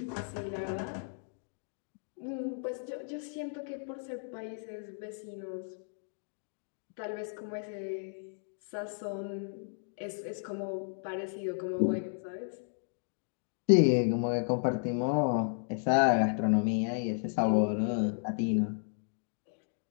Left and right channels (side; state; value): right; silent; digital silence